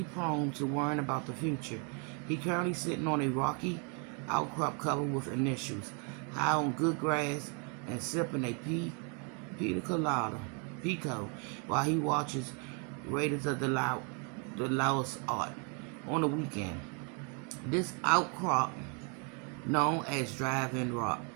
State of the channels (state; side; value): quieter; left; 37.3 dB